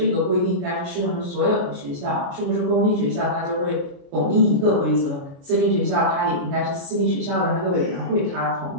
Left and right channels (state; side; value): late; left; 28 ms